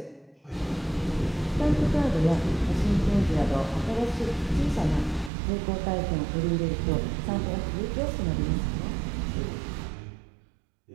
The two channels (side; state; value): left; drops out; at 5.3 s